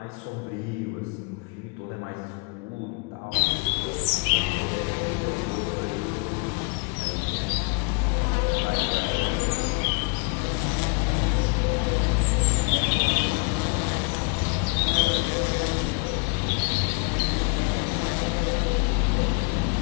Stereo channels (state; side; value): quieter; right; 33.7 dB